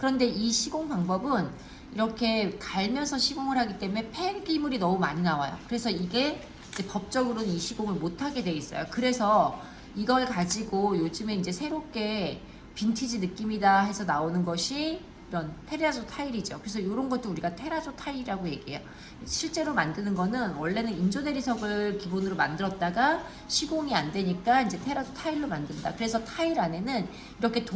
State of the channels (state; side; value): identical; both; correlation 1.00